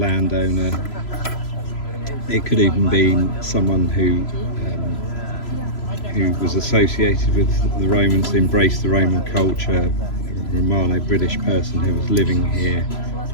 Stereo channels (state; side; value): late; right; 3.0 ms